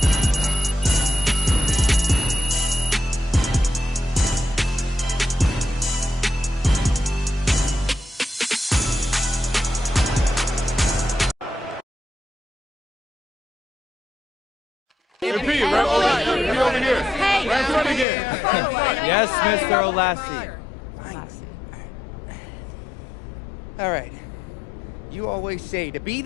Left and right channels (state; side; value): drops out; right; at 18.1 s